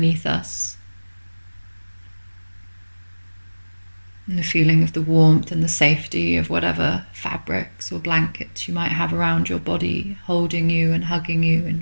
us. And the feeling of the warmth and the safety of whatever fabrics or blankets you might have around your body, holding you and hugging you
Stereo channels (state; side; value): inverted; both; correlation -1.00